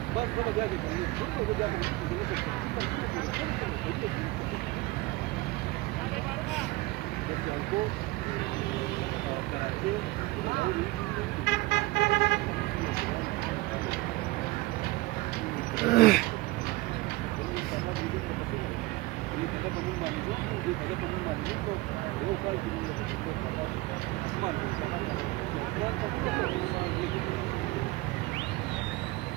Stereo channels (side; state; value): left; quieter; 20.5 dB